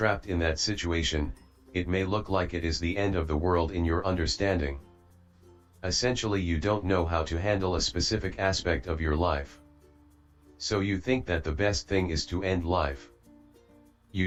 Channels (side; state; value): both; identical; correlation 1.00